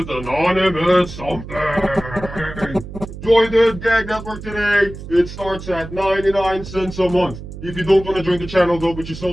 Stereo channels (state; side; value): noise; right; hum, 12 dB below the sound